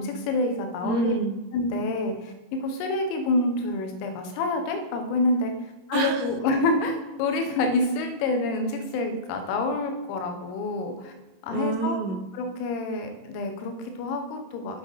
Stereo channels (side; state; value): right; late; 22 ms